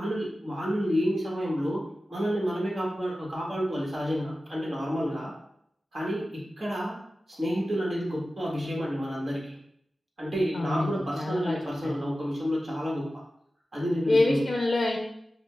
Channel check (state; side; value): normal; both; correlation 0.94